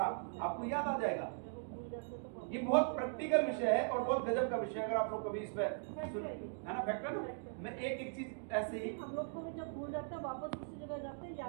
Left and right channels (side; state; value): left; silent; digital silence